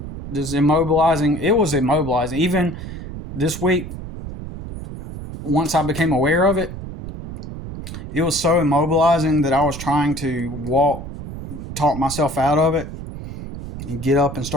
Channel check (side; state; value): right; noise; rumble, 10 dB below the sound